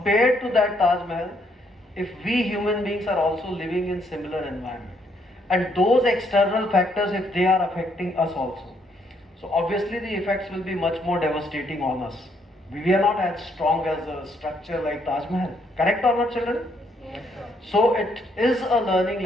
to that Taj Mahal, if we human beings are also living in similar environment, and those external factors, if they are affecting us also, so obviously the effects will be much more devastating on us. We are not as strong as a structure like Taj Mahal. Correct or not, children? So it is a learning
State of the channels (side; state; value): both; normal; correlation 0.71